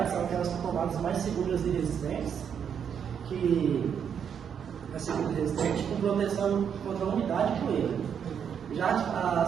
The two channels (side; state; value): left; quieter; 7.8 dB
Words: são aquelas tomadas mais seguras e resistentes, com proteção contra a umidade e poeira. Já